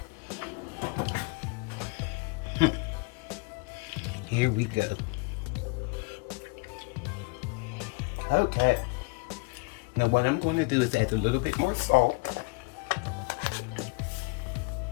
Here we go. Okay. Now what I'm going to do is add a little bit more salt.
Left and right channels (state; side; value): quieter; right; 28.0 dB